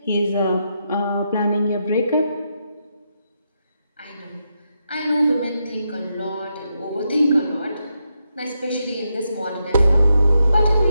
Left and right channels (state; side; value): inverted; both; correlation -0.83